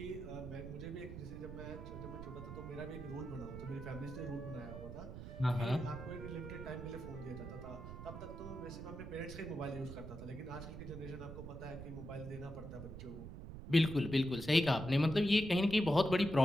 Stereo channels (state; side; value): noise; right; rumble, 10 dB below the sound